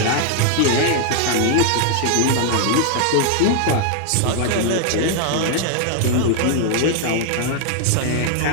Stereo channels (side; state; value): both; different; correlation 0.00